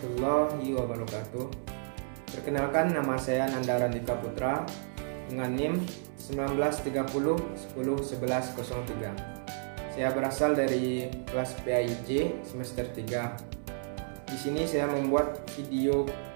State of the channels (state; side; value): silent; left; 57 dB below the other